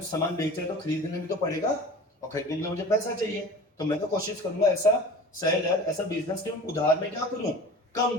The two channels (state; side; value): normal; both; correlation 0.39